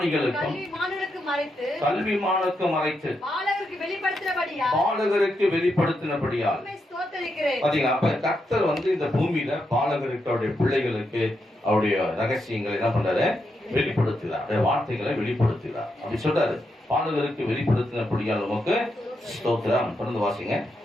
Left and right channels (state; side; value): normal; both; correlation 0.83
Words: கல்விமானுக்கும் மறைத்து பாலகருக்கு வெளிப்படுத்தினபடியால். பாத்தீங்களா? அப்ப கர்த்தர் வந்து இந்த பூமியில பாலகருக்கு, அவருடைய பிள்ளைகளுக்கு அவருடைய ரகசியங்களை என்ன பண்றாரு? வெளிப்படுத்துகிறார். வார்த்தைகளை வெளிப்படுத்துகிறார். அப்படி சொல்றாரு. பாலகருக்கு வெளிப்படுத்தினபடியால் உமக்கு ஸ்தோத்திரம். தொடர்ந்து வாசிங்க.